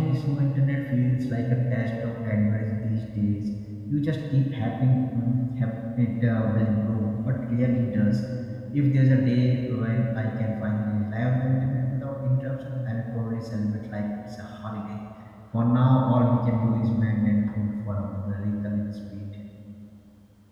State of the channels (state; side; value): identical; both; correlation 1.00